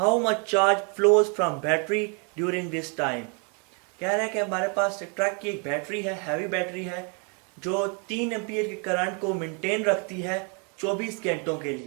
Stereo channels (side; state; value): left; quieter; 36.7 dB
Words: much charge flows from battery during this time. कह रहा है कि हमारे पास ट्रक की एक बैटरी है, हैवी बैटरी है, जो 3 एम्पियर के करंट को मेंटेन रखती है 24 घंटों के